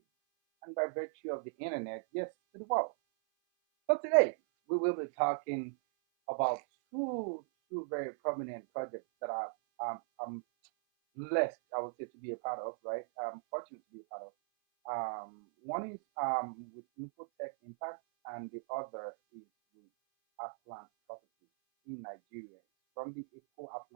and by virtue of the internet, yes, to the world. So today, we will be talking about two very prominent projects that I'm blessed, I would say, to be a part of, right? Fortunate to be a part of. One is with Infotech Impact, and the other is with Arkland Properties in Nigeria. It's from the Eco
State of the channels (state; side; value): silent; left; 53 dB below the other